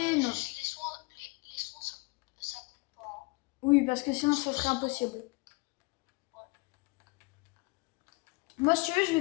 non. Juste les soins ça compte pas, hein. Oui, parce que sinon, ça serait Sinon, impossible. ouais. Moi, si tu veux, je vais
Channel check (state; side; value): quieter; right; 26.9 dB